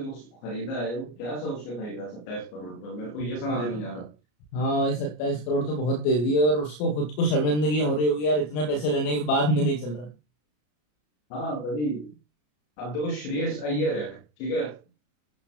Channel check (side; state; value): right; late; 33 ms